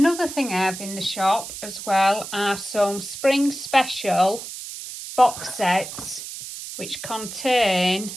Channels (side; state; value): right; noise; hiss, 10 dB below the sound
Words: thing I have in the shop as well are some spring special box sets which contain,